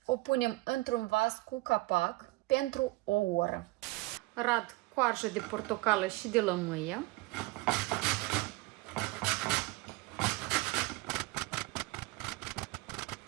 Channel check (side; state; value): left; quieter; 22.0 dB